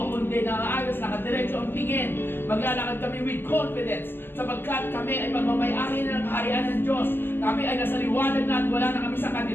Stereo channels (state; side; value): late; right; 0.10 ms